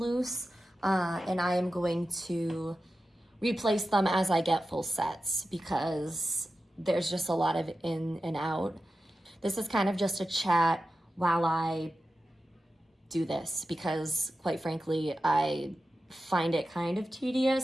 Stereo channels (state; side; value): normal; both; correlation 0.92